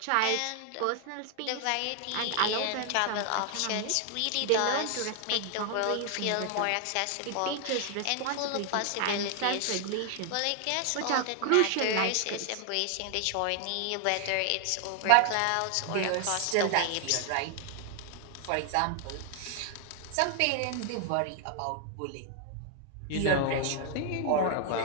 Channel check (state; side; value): different; both; correlation 0.00